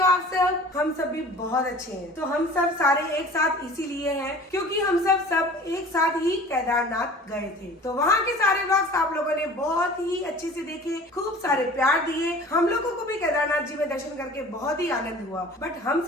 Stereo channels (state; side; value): normal; both; correlation 0.44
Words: आप सब? हम सब भी बहुत अच्छे हैं। तो हम सब सारे एक साथ इसीलिए हैं क्योंकि हम सब एक साथ ही केदारनाथ गए थे। तो वहाँ के सारे व्लॉग्स आप लोगों ने बहुत ही अच्छे से देखे, खूब सारे प्यार दिए। हम लोगों को भी केदारनाथ जी में दर्शन करके बहुत ही आनंद हुआ। बट हम